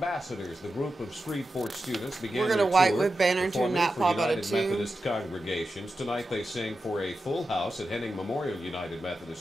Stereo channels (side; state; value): both; normal; correlation 0.90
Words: The group of Shreveport students began We're going to white with Banner to a nap pop out of 2. Methodist congregations. Tonight they sang for a full house at Henning Memorial United